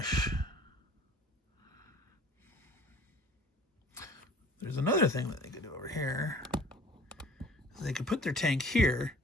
There's another thing that they could do over here. They could put their tank here,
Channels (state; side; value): normal; both; correlation 0.49